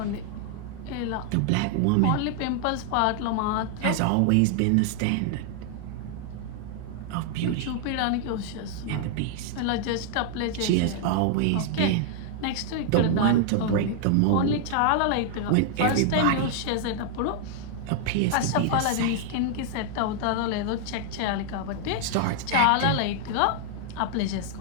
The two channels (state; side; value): different; both; correlation 0.00